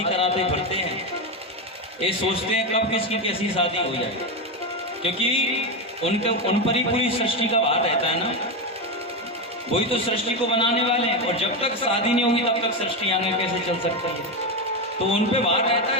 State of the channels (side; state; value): both; normal; correlation 0.12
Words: कराते फिरते हैं। ये सोचते हैं कब किसकी कैसी शादी हो जाए, क्योंकि उन पर ही पूरी सृष्टि का भार रहता है ना। वही तो सृष्टि को बनाने वाले हैं, और जब तक शादी नहीं होगी तब तक सृष्टि आगे कैसे चल सकती है। तो उन पे भार रहता